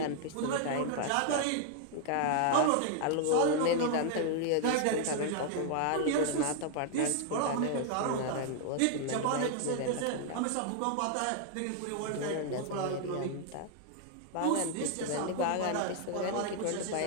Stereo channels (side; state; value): both; different; correlation 0.00